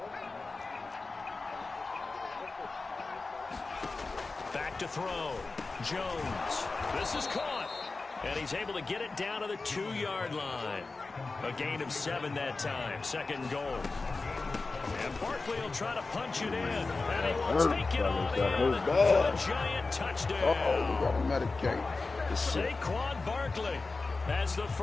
Back to throw. Jones. This is caught. And he's able to get it down to the 2-yard line. A gain of 7 that time. 2nd and goal. And Barkley will try to punch it in. And he will take it on in for a giant touchdown. Uh-oh, we got to medicate. Saquon Barkley, as the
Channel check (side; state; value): right; quieter; 3.7 dB